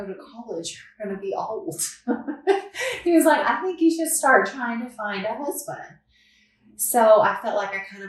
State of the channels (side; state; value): both; identical; correlation 1.00